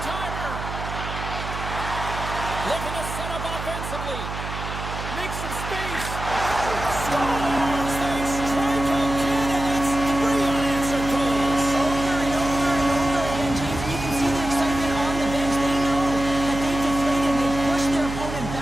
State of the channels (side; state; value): right; noise; hum, 7 dB below the sound